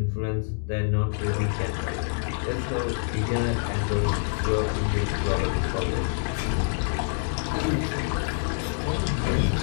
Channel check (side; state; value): right; silent; digital silence